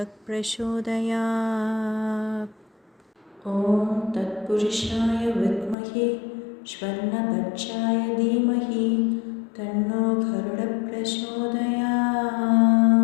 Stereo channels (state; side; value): drops out; right; at 5.8 s